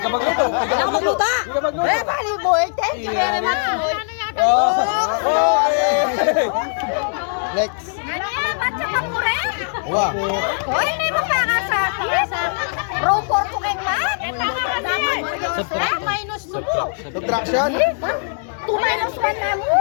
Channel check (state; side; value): silent; right; digital silence